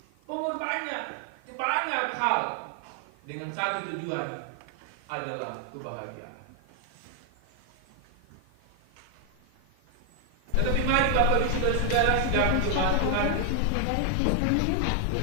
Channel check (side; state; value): both; different; correlation 0.00